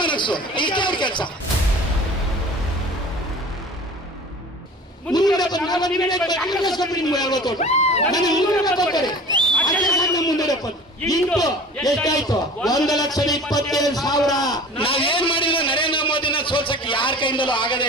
ಇಷ್ಟೇ ಅವ್ರ ಕೆಲಸ. ಮುಂದೆ ಎಷ್ಟಾಯ್ತು? 1,27,000. ನಾವೇನ್ ಮಾಡಿದ್ರು ನರೇಂದ್ರ ಮೋದಿನ ಸೋಲ್ಸಕ್ಕೆ ಯಾರ ಕೈಯಿಂದಲೂ ಆಗದೇ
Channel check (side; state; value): both; normal; correlation 0.41